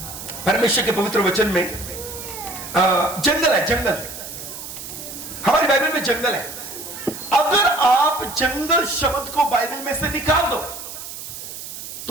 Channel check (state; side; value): noise; right; hiss, 10 dB below the sound